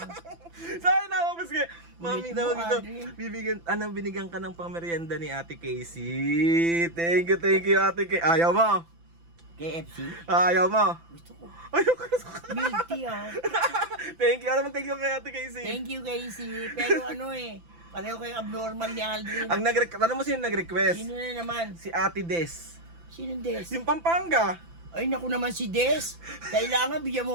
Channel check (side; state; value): left; late; 5.9 ms